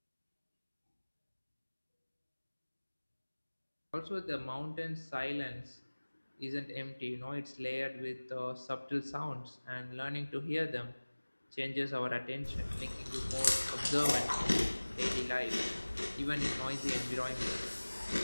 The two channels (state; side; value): inverted; both; correlation -1.00